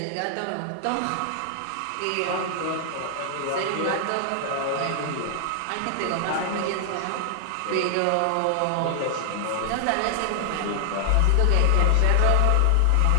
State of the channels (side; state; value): both; different; correlation 0.00